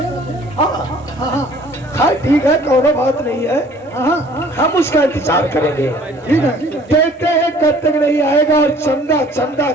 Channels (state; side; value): normal; both; correlation 0.54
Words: हाँ, ठीक है, कोई बात नहीं है। हम उसका इंतजार करेंगे। ठीक है, देखते हैं कब तक नहीं आएगा। और चंदा चंदा